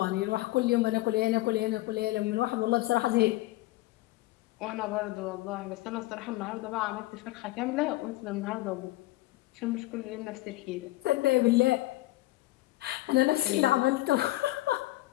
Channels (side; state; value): right; quieter; 18.4 dB